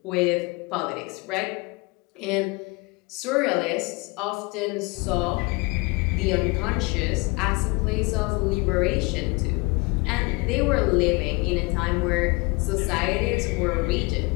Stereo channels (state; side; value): quieter; right; 26.8 dB